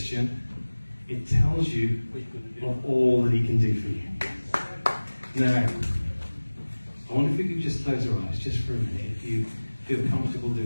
it tells you of all that he can do for you. Now, I wonder if we could just close our eyes just for a minute, if you feel comfortable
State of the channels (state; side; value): inverted; both; correlation -1.00